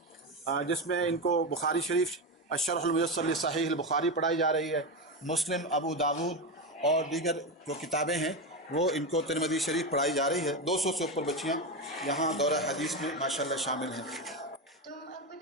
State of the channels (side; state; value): both; normal; correlation 0.15